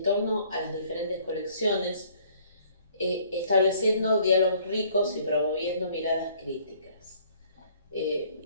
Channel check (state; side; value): inverted; both; correlation -0.59